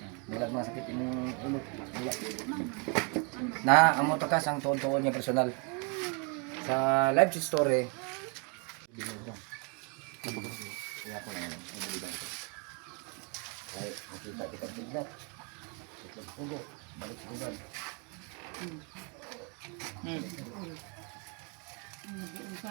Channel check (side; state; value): left; quieter; 35.3 dB